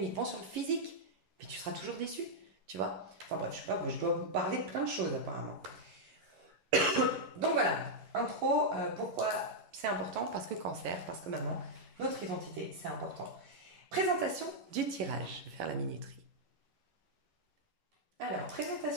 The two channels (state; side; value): late; left; 11 ms